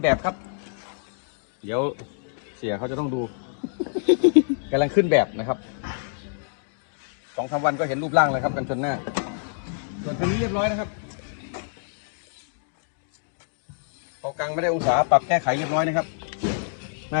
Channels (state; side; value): silent; right; digital silence